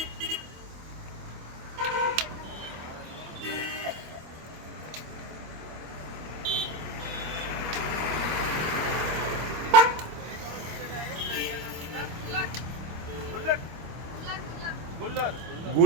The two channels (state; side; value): late; left; 25 ms